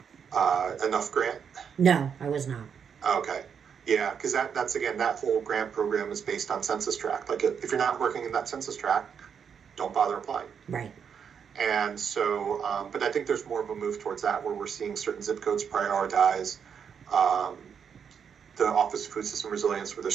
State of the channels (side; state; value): left; quieter; 7.2 dB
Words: Enough grant? No, I was not. Okay. Yeah, because that's again, that whole grant program is based on census tract. Like if you're not working in that census tract, don't bother applying. Right. And so, but I think there's more of a move towards that where we're seeing certain zip codes prioritize the Office of Food System Resilience with their